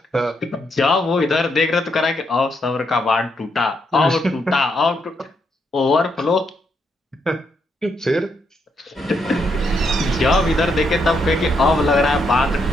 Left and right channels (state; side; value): normal; both; correlation 0.78